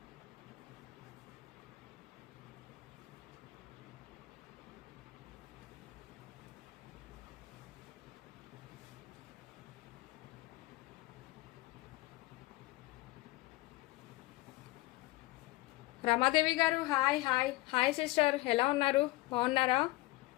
రమాదేవి గారు హాయ్ హాయ్ హాయ్ సిస్టర్, ఎలా ఉన్నారు? బాగున్నారా?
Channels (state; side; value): quieter; right; 20.0 dB